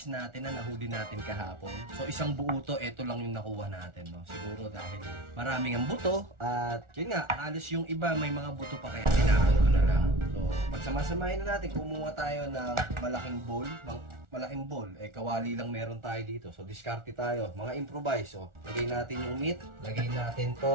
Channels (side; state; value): left; late; 1.4 ms